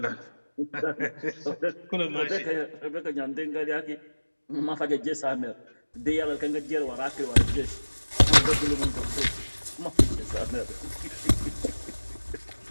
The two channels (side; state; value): both; inverted; correlation -1.00